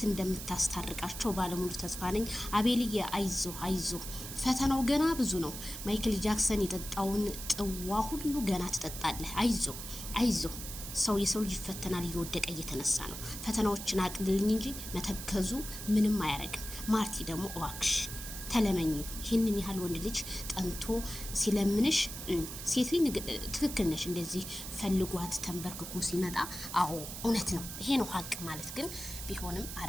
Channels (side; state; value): right; noise; hiss, 9 dB below the sound